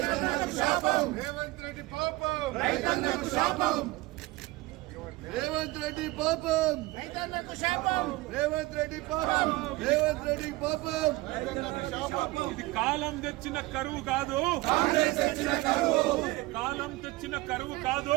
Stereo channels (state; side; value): quieter; left; 20.6 dB